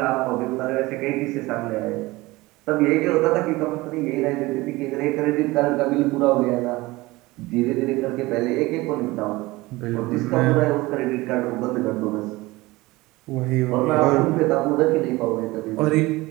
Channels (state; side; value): quieter; left; 20.7 dB